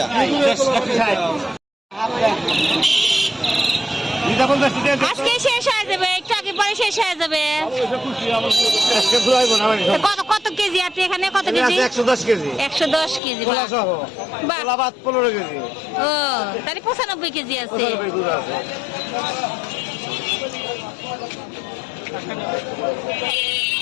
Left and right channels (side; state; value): right; drops out; at 13.2 s